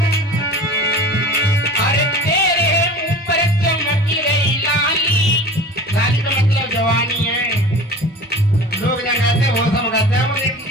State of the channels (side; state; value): both; normal; correlation 0.38